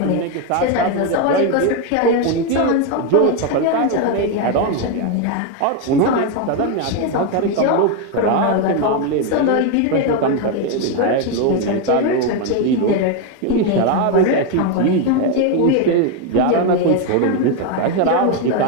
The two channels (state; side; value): different; both; correlation 0.02